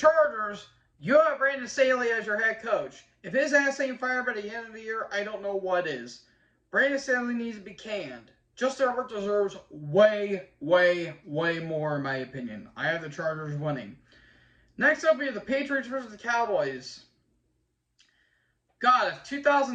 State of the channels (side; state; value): both; identical; correlation 1.00